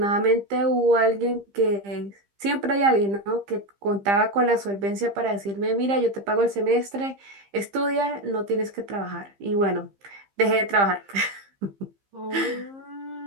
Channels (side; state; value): left; late; 15 ms